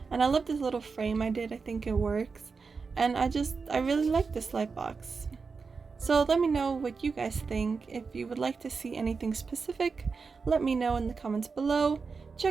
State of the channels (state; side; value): quieter; left; 4.9 dB